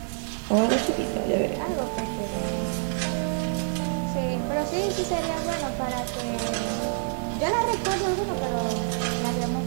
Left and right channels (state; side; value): silent; left; digital silence